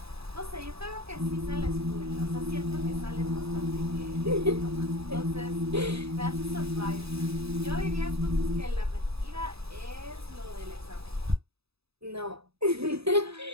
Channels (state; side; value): late; left; 0.78 ms